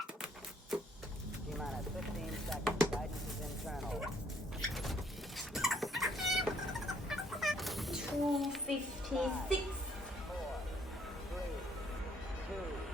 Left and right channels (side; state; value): both; normal; correlation 0.66